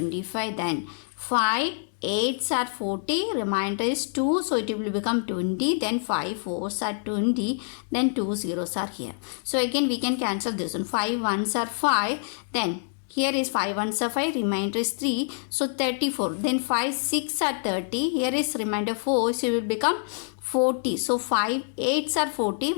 then 5 8s are 40, remainder is 2, so it will become 20, then 5 4s are 20, then 2 zeros are here. So again we can cancel this one. 5 1s are 5, then here is 5 1s are 5, remainder is 3, so 34. Then 5 6 are 30, here is remainder 4, so it will become 40. So 5 8s are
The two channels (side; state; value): right; silent; digital silence